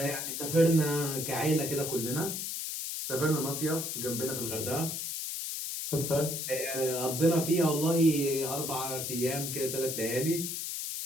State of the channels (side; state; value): left; noise; hiss, 4 dB below the sound